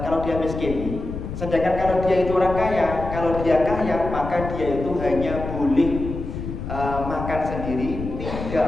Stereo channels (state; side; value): noise; left; rumble, 7 dB below the sound